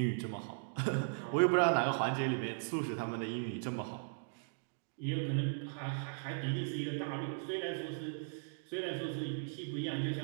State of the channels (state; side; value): silent; left; digital silence